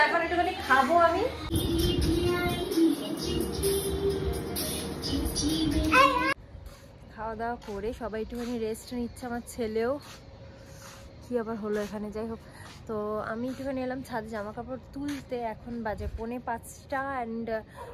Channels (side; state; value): both; identical; correlation 1.00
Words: এখন একটুখানি খাবো আমি। খাওয়া দাওয়া করে সবাই একটুখানি রেস্ট নিচ্ছে, আমার ছেলেও। কি আবার হলো এখানে, যাই হোক। তো আমি একটুখানি এলাম ছাদে জামা কাপড় তুলতে। এখন বাজে 4:45 অ্যান্ড